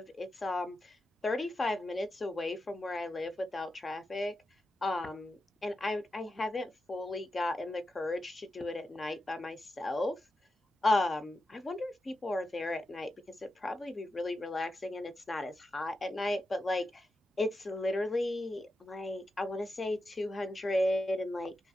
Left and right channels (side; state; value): both; normal; correlation 0.89